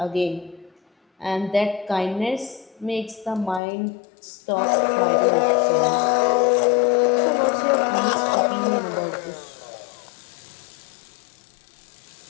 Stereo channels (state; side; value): drops out; right; at 3.6 s